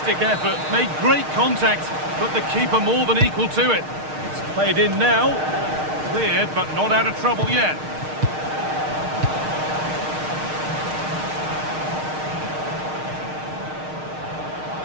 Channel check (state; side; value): late; left; 6.5 ms